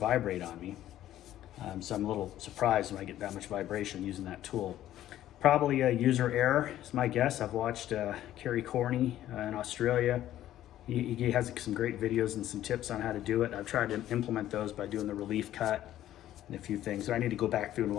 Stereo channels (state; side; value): quieter; right; 12.9 dB